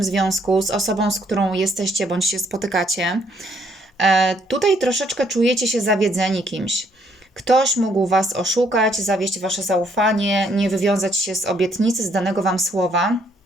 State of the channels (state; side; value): normal; both; correlation 0.68